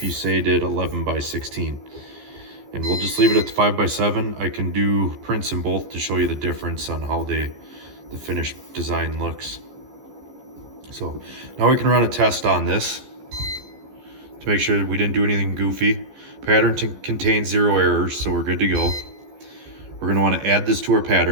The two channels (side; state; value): left; late; 15 ms